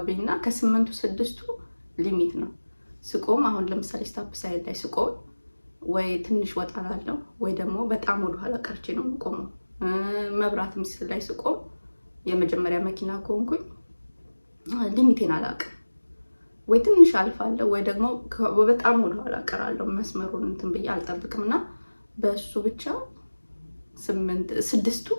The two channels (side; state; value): both; inverted; correlation -1.00